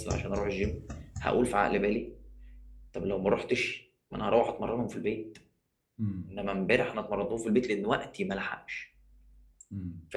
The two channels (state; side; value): identical; both; correlation 1.00